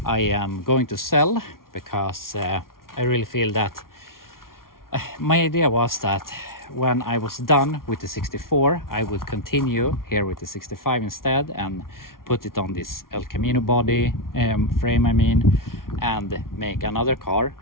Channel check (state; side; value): late; right; 0.92 ms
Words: I am going to sell because I really feel that my idea was that when I was done with the 64, I would continue here with the 65 instead and put it on this El Camino body frame, and make another car.